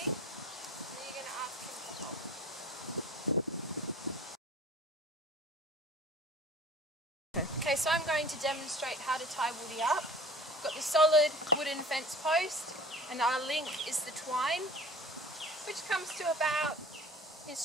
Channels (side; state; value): both; normal; correlation 0.44